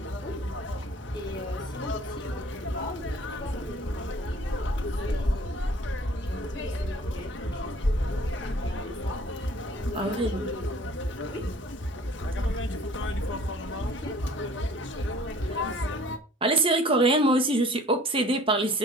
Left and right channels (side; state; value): both; normal; correlation 0.51